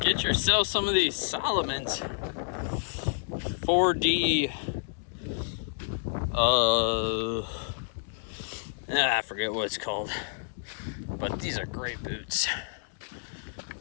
Get yourself some of these Solomon's 4D. I forget what it's called. But these are great boots.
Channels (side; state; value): right; silent; digital silence